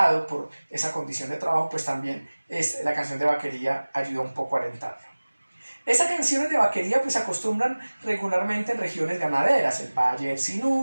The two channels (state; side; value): inverted; both; correlation -1.00